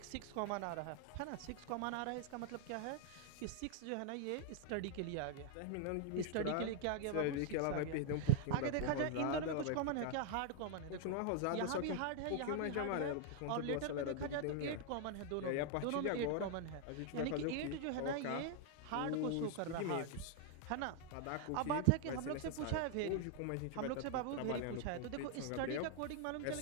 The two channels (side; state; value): both; different; correlation 0.00